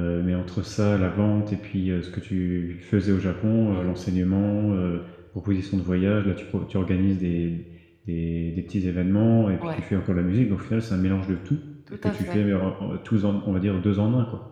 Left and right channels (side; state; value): both; identical; correlation 1.00